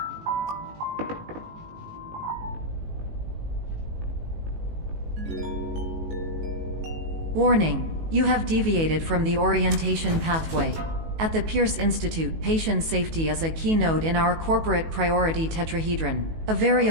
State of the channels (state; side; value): late; left; 18 ms